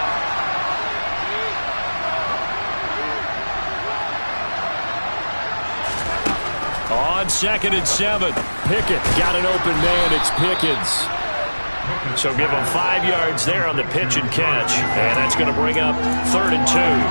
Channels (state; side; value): inverted; both; correlation -1.00